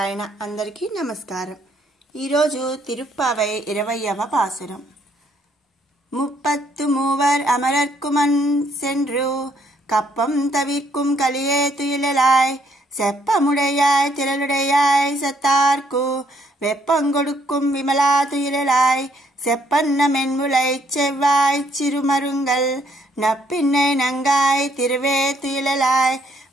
అందరికీ నమస్కారం. ఈరోజు తిరుప్పావై 20వ పాసురం. முப்பத்து மூவர் அமரர்க்குமன் சென்று கப்பம் தவிர்க்கும் கலியே துயிலாய் செப்பமுடையாய் திரளுடையாய் சத்தார்க்கு வெப்பங்கொடுக்கும் விமலா துயிலாய் செப்பன்ன மென்முலை செவ்வாய் சிறுமருங்கள் நப்பின்னை நங்காய் திருவே துயிலாய்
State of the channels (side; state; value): both; normal; correlation 0.68